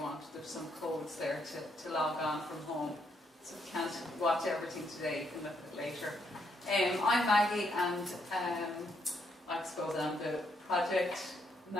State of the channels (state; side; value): normal; both; correlation 0.75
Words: There's some codes there to log on from home. So if you can't watch everything today, you can look at it later. I'm Maggie, and I suppose I'm the project